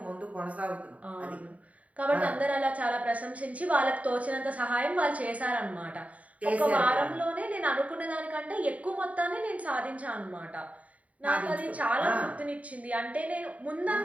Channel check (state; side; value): late; left; 0.068 ms